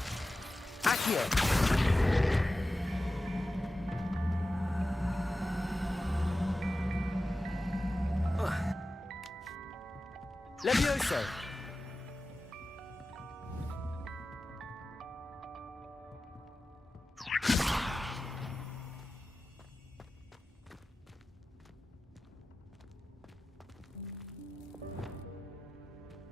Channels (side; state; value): both; normal; correlation 0.94